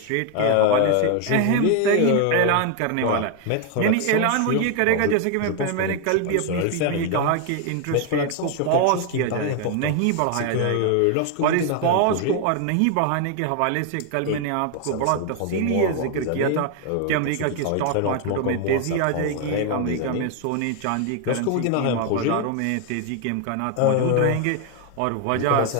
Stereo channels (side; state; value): both; different; correlation 0.01